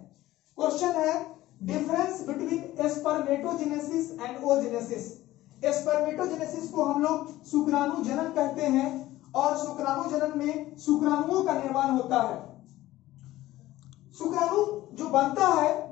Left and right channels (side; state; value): right; quieter; 16.0 dB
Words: क्वेश्चन है difference between spermatogenesis and oogenesis. Spermatogenesis को हम लोग शुक्राणु जनन कहते हैं और शुक्राणु जनन में शुक्राणुओं का निर्माण होता है। शुक्राणु जो बनता है